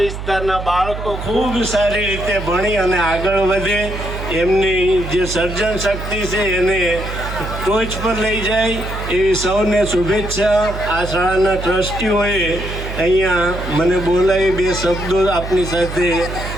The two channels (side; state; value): right; noise; hum, 7 dB below the sound